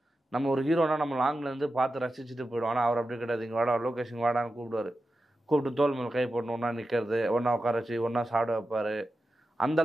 நம்ம ஒரு ஹீரோனா நம்ம லாங்லேருந்து பார்த்து ரசிச்சுட்டு போயிடுவோம். ஆனால் அவர் அப்படி கிடையாது. இங்கே வாடா, லொக்கேஷன் வாடான்னு கூப்பிடுவார். கூப்பிட்டு தோல் மேலே கை போட்டு ஒன்றா நிற்கிறது, ஒன்றா உட்கார வச்சு ஒன்றா சாப்பிட வைப்பார்.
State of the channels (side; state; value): both; normal; correlation 0.92